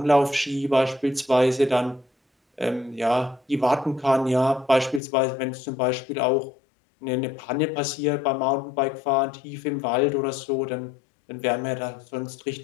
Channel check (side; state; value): right; drops out; at 5.0 s